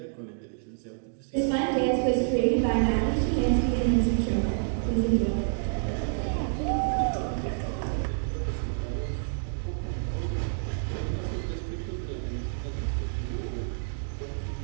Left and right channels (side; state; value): left; silent; digital silence